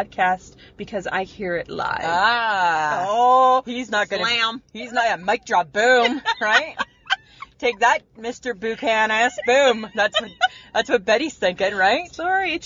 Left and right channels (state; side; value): identical; both; correlation 1.00